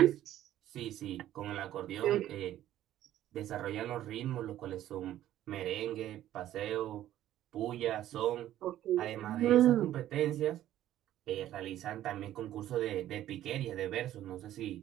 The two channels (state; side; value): quieter; left; 12.8 dB